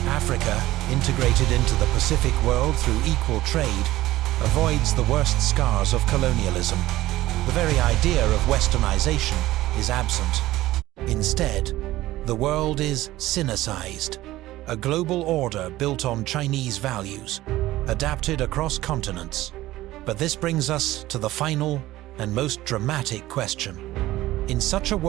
Africa, integrated into the Pacific world through equal trade, avoids the worst scars of colonialism. The very idea of westernization is absent. Instead, the world is Sinicized, a global order built on Chinese values, adapted across continents. But this brings us to the final and most dramatic question. In such a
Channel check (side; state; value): left; quieter; 16.4 dB